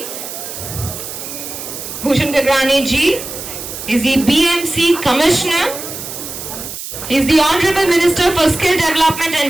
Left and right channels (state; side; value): noise; right; hiss, 9 dB below the sound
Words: Bhushan Gagrani ji is the BMC Commissioner. He is the Honorable Minister for Skill Development